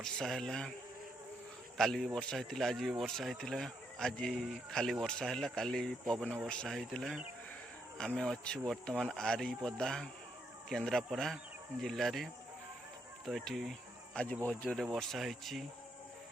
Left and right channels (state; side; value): normal; both; correlation 0.77